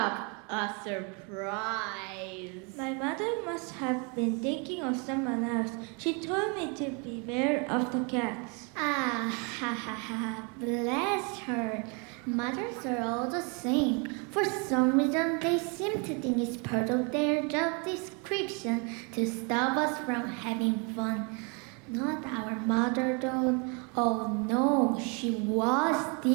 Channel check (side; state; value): left; quieter; 33.9 dB